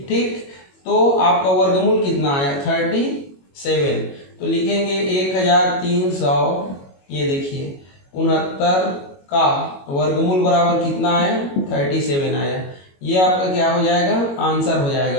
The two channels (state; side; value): late; right; 22 ms